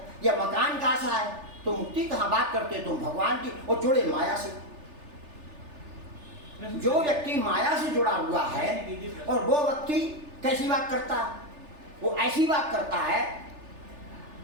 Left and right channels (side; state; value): left; late; 3.4 ms